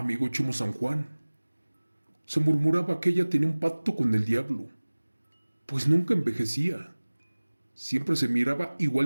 Chimo San Juan, se murmuraba que ella tenía un pacto con el diablo, pues nunca envejecía. Siempre se miraba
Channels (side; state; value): both; inverted; correlation -1.00